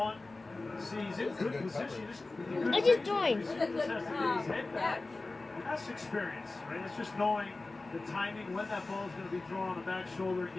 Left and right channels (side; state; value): right; quieter; 3.3 dB